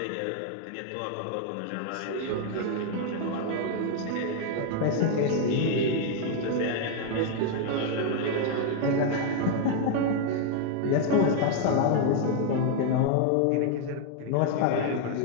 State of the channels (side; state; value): both; different; correlation 0.00